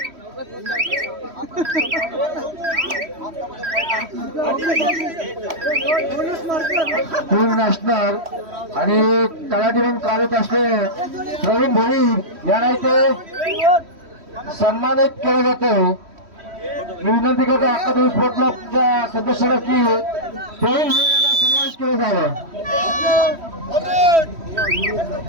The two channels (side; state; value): left; late; 3.1 ms